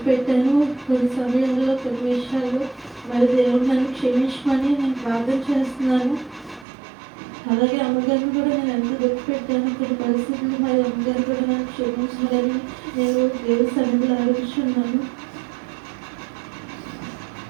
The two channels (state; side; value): drops out; left; at 6.7 s